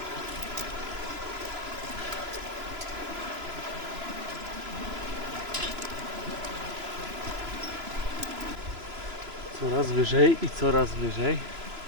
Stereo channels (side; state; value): left; late; 3.0 ms